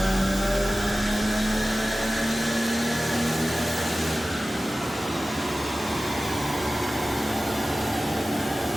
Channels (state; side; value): normal; both; correlation 0.96